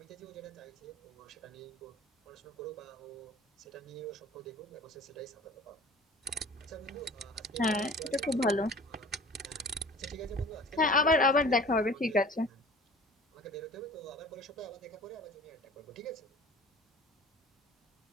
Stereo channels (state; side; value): normal; both; correlation 0.44